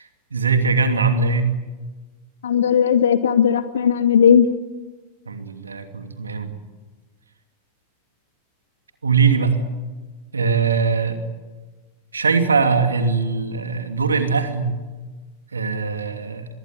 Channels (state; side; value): inverted; both; correlation -0.49